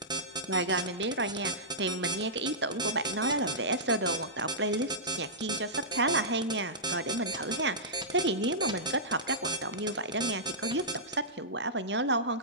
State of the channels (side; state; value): both; normal; correlation -0.15